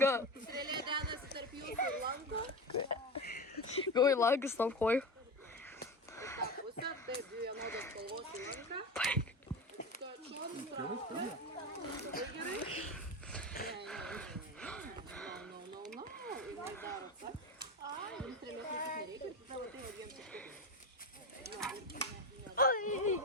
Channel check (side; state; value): both; normal; correlation 0.23